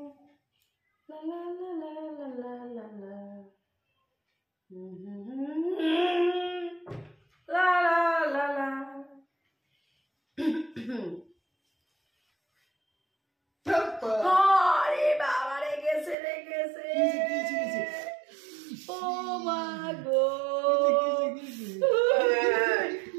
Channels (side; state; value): left; drops out; at 16.2 s